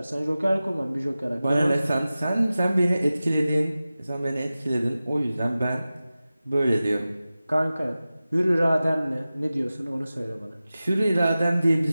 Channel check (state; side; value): inverted; both; correlation -0.96